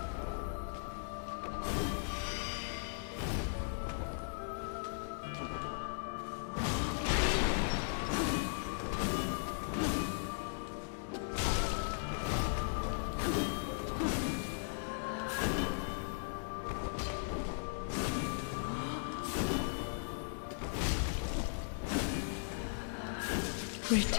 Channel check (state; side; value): silent; right; digital silence